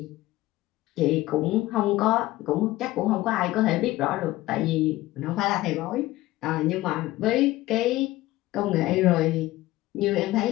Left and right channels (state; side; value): quieter; right; 17.3 dB